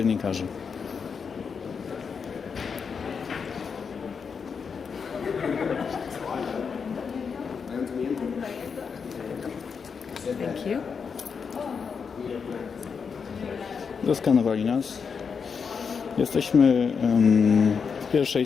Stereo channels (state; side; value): quieter; right; 6.0 dB